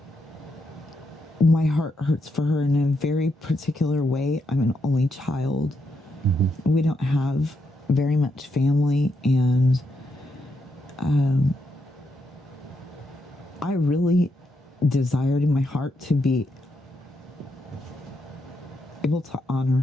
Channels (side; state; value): both; normal; correlation 0.81